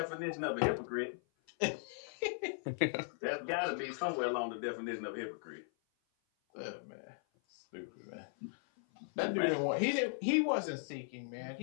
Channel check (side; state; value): right; silent; 53 dB below the other